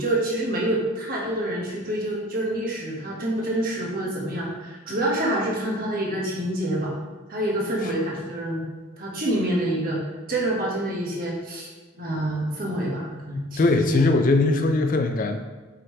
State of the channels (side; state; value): both; normal; correlation 0.49